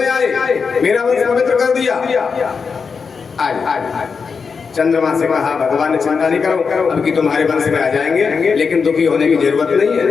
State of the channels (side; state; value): right; quieter; 5.4 dB